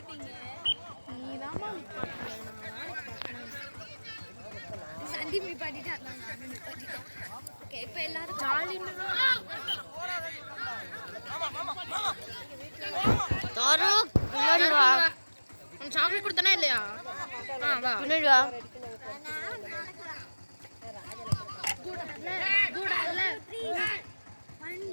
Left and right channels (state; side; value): inverted; both; correlation -1.00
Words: சந்தீப் நிப்பாட்டிட்டான். ஓகே இப்போ எல்லாரும் தாரூக் பின்னாடி வா. உன் சாக்லேட் கொடுத்தனா இல்லையா? வா பின்னாடி வா.